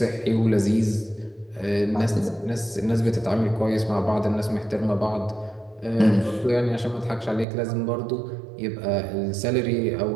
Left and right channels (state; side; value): drops out; left; at 7.5 s